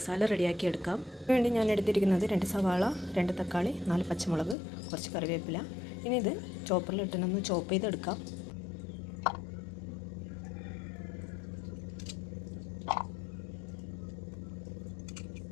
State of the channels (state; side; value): drops out; right; at 4.5 s